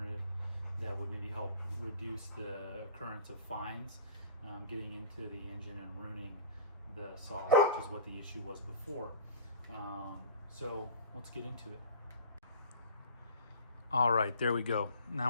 that would maybe help reduce the occurrence of fines getting into the engine and ruining the saws, which is what the issue was before. So let's get into it. All right, there we go.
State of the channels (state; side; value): inverted; both; correlation -0.41